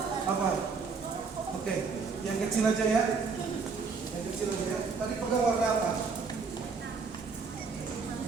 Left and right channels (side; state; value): left; quieter; 4.9 dB